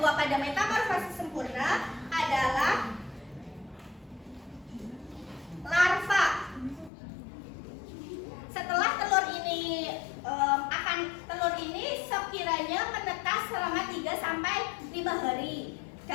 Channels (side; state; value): right; drops out; at 6.9 s